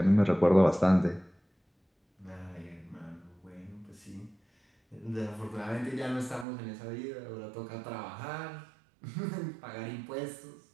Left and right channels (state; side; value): drops out; left; at 6.5 s